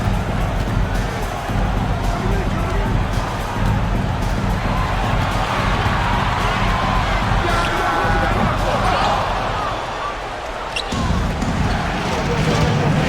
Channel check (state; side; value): identical; both; correlation 1.00